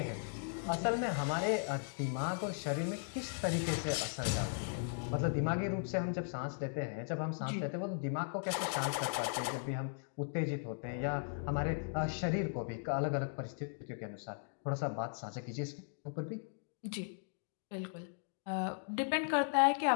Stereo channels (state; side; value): silent; right; digital silence